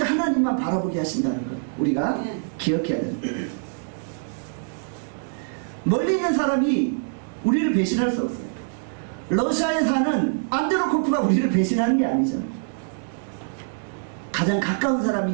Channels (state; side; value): silent; left; digital silence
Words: 하나님만 바라보게 하신다는 걸 우리가 기억해야 됩니다. 멀리 있는 사람이 우리를 배신할 수 없어요. 러시아에 사는 안드로코프가 우리를 배신하는 게 아니잖아요. 가장 가까운